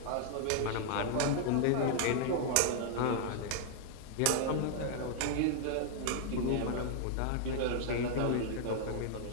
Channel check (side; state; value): both; different; correlation -0.01